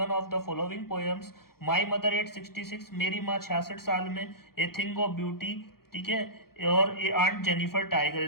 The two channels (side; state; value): right; late; 0.94 ms